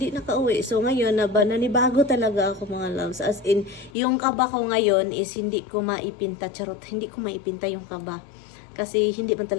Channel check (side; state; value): right; drops out; at 3.9 s